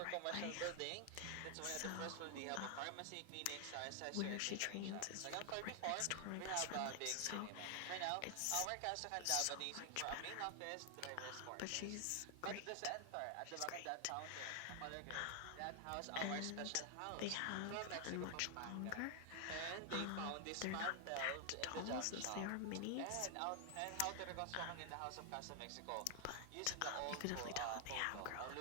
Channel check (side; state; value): both; different; correlation 0.00